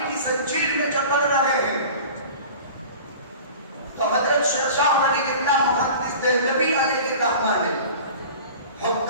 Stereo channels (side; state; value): both; inverted; correlation -0.39